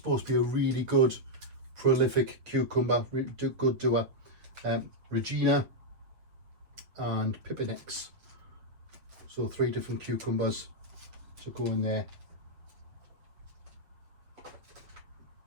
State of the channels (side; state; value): left; late; 8.0 ms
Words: to be a really good prolific cucumber, good doer. Regina and Pipinex. So 3 different cucumbers to go in there.